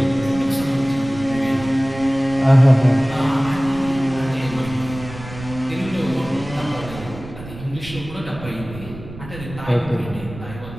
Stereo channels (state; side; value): noise; right; rumble, 13 dB below the sound